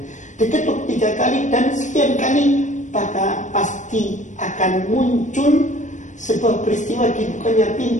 Diketuk 3 kali dan sekian kali, maka pasti akan muncul sebuah peristiwa dibukanya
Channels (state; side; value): late; right; 0.35 ms